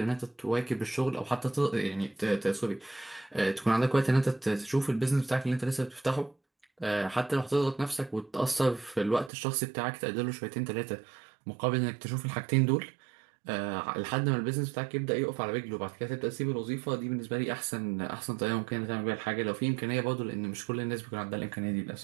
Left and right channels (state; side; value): drops out; left; at 9.3 s